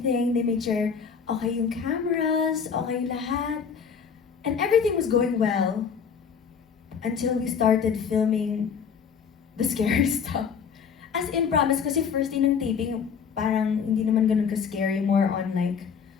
They made sure okay yung cameras, okay lahat. And everything was going well until we started filming the scary stuff. As in, promise, kasi first day ng taping, parang hindi naman ganun ka-scary, more on like,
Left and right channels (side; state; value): right; quieter; 6.6 dB